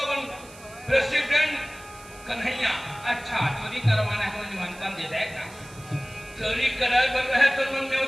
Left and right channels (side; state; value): right; noise; hiss, 21 dB below the sound